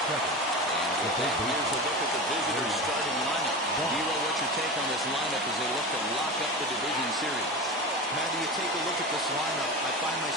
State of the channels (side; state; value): both; normal; correlation 0.26